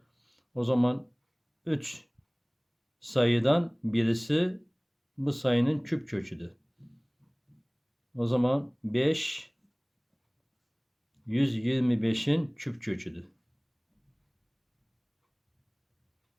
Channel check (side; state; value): both; identical; correlation 1.00